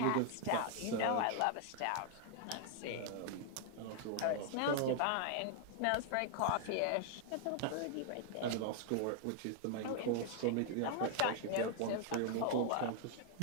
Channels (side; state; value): both; different; correlation 0.00